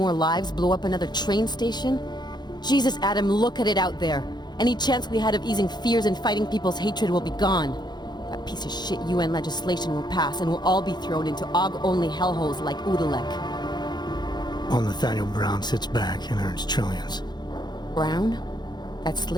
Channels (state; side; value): late; right; 0.21 ms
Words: lives, blow up another train station? Jesus, Adam, look at it out there. Any chance we had of easing fears and fighting people's hatred will be gone. That piece of shit UN legislation will pass and we'll all be thrown into AUG-only hellholes like Udalek. While Nathaniel Brown sits back and earns trillions. Brown? That